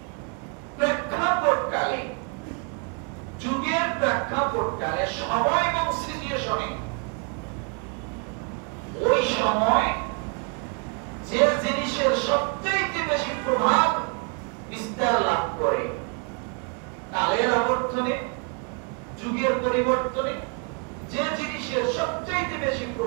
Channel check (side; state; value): left; quieter; 37.4 dB